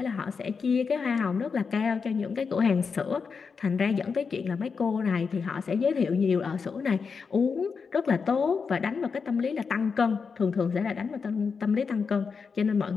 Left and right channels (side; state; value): right; quieter; 5.4 dB